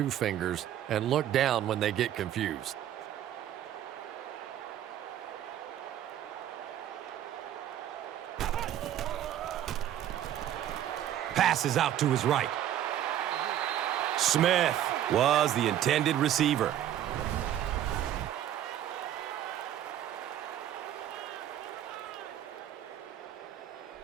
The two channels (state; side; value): quieter; left; 11.3 dB